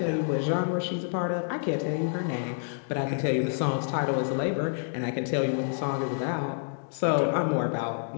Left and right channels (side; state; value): right; silent; digital silence